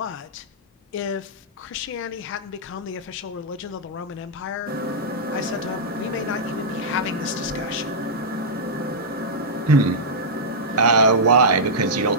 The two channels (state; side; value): normal; both; correlation -0.10